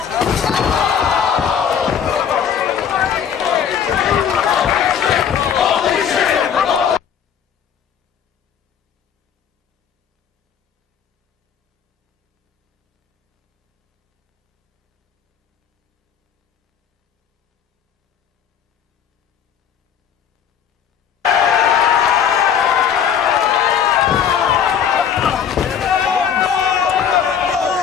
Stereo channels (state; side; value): quieter; right; 8.1 dB